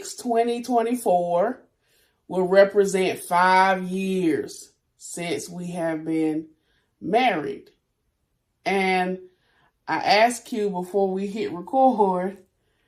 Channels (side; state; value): both; identical; correlation 1.00